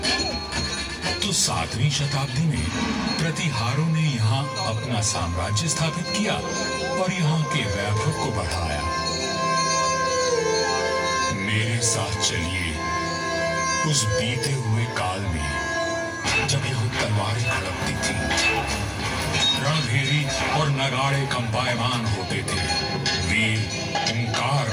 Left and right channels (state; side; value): identical; both; correlation 1.00